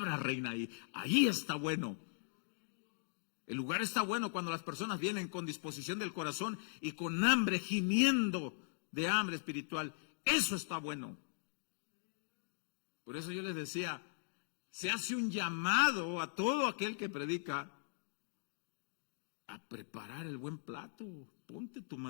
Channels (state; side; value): silent; right; digital silence